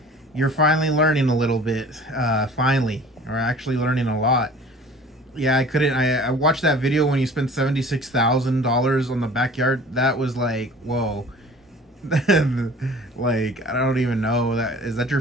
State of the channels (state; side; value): normal; both; correlation 0.46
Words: You're finally learning a little bit. Finally, or actually learning a lot. Yeah, I watched that video when you spent $76,000 on the backyard. That was like, whoa. Like, I don't even know, that is that